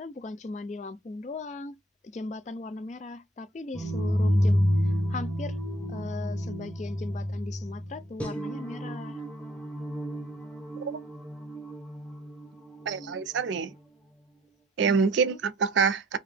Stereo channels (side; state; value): both; normal; correlation 0.62